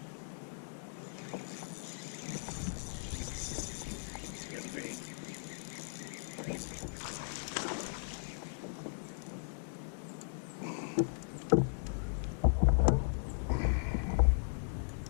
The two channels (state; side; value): silent; right; digital silence